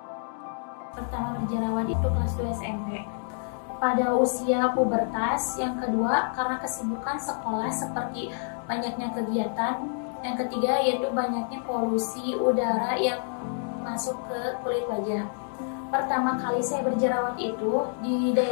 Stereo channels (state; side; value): silent; right; digital silence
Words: Pertama berjerawat itu kelas 2 SMP. Pada usia pubertas. Yang kedua karena kesibukan sekolah seperti banyaknya kegiatan. Yang ketiga yaitu banyaknya polusi udara yang masuk ke kulit wajah. Pertama kali saya berjerawat itu di